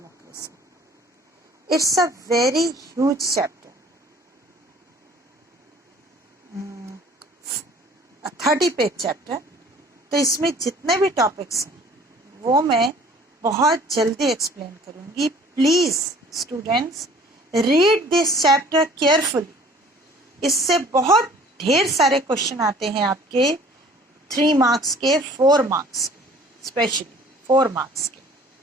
It's a very huge chapter, a 30-page chapter. तो इसमें जितने भी topics हैं वो मैं बहुत जल्दी एक्सप्लेन करूँगी. Please students read this chapter carefully. इससे बहुत ढेर सारे क्वेश्चन आते हैं आपके 3 मार्क्स के, 4 मार्क्स के, स्पेशली 4 मार्क्स के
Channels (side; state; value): both; normal; correlation 0.51